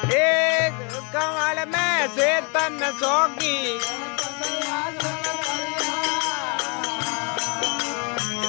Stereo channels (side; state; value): right; quieter; 34.0 dB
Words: एक कवड़ में से तन सोखी